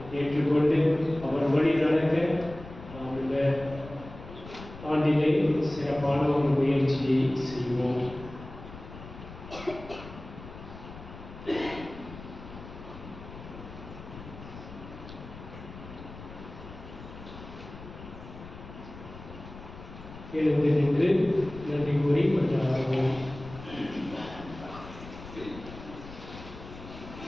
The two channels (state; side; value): noise; left; rumble, 14 dB below the sound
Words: ஏற்றுக்கொண்டு அவர் வழி நடக்க நாம் இந்த ஆண்டிலே சிறப்பான ஒரு முயற்சியை செய்வோம். எழுந்து நின்று நன்றி கூறி மன்றாடுவோம்.